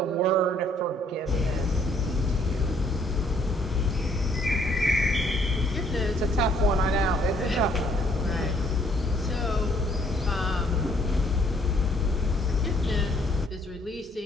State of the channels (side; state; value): both; normal; correlation 0.65